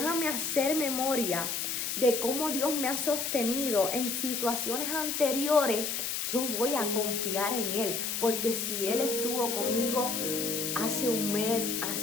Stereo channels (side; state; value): left; noise; hiss, 2 dB below the sound